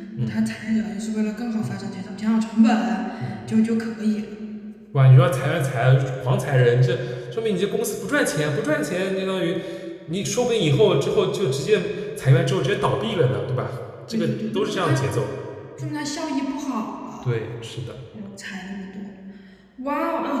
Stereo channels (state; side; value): identical; both; correlation 1.00